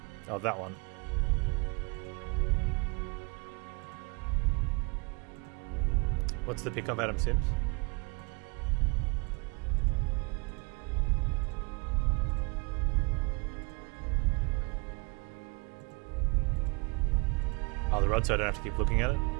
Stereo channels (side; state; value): left; quieter; 31.3 dB